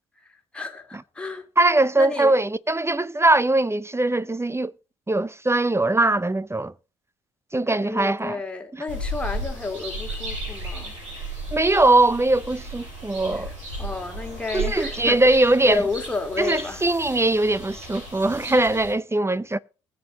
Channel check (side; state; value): both; normal; correlation 0.67